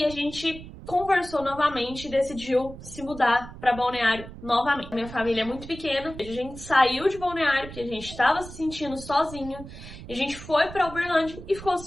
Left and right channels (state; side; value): noise; right; rumble, 14 dB below the sound